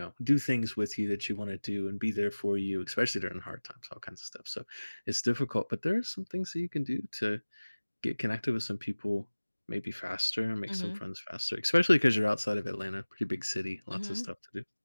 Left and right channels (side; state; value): both; inverted; correlation -1.00